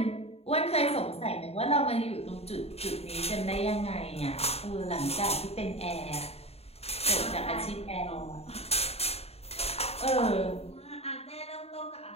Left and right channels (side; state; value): right; late; 0.30 ms